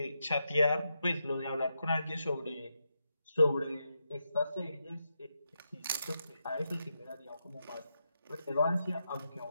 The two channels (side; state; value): both; inverted; correlation -0.85